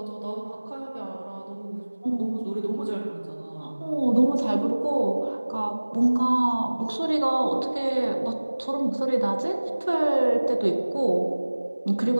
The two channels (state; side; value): inverted; both; correlation -1.00